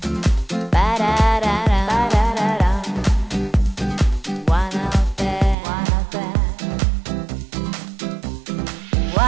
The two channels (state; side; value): drops out; left; at 5.6 s